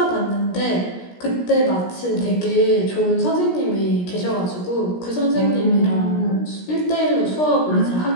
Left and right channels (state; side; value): late; right; 17 ms